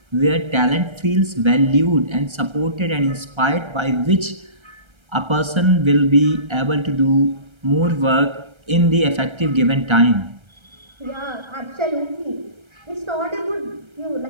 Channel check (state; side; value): late; left; 1.3 ms